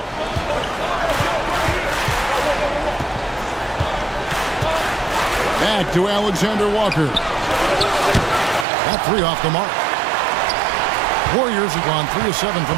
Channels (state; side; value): drops out; left; at 8.7 s